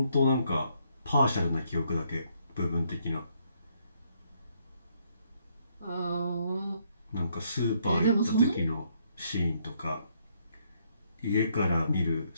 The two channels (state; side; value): inverted; both; correlation -0.72